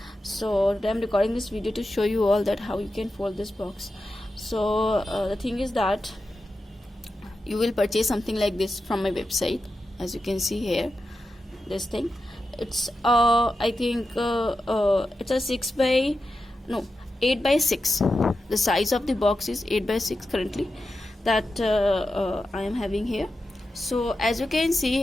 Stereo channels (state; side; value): normal; both; correlation 0.90